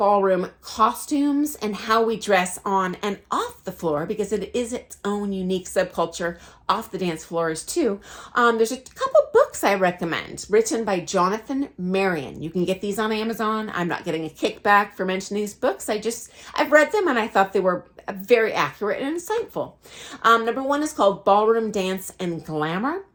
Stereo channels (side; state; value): both; identical; correlation 1.00